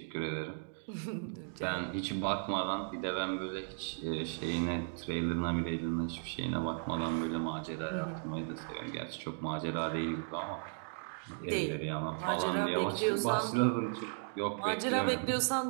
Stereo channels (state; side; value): silent; left; 54 dB below the other